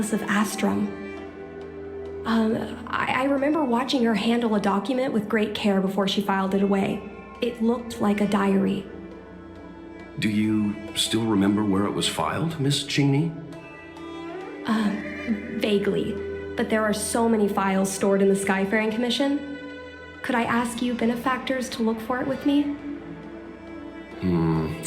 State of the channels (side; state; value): both; identical; correlation 1.00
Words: of Astrum. I remember watching her handle a document with great care before she filed it away. It looked like a diary. Do you still remember where it was filed, Miss Qingni? Vaguely, but there are so many files stored in the Skyfaring Commission. Could I ask you benefactors to look for it with me?